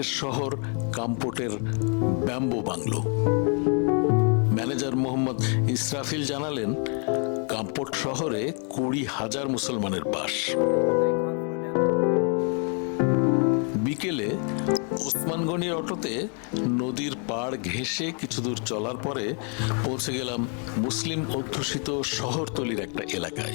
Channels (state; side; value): quieter; right; 39.6 dB